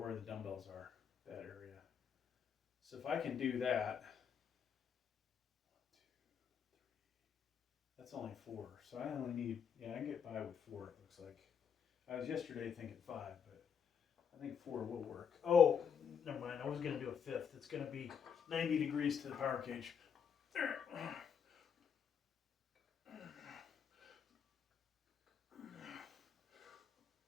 the dumbbells are, that area. So if I can do that, 1, 2, 3, that's only 4. So I only need, I can get by with 4, it looks like. I was yesterday thinking 5, but I think 4 will work. Oh, never mind. I was going to do a 5th. It's going to be 90 degrees to the power cage. There.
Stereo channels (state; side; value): quieter; right; 7.2 dB